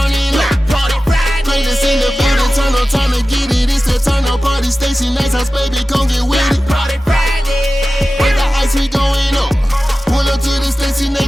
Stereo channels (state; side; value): normal; both; correlation 0.95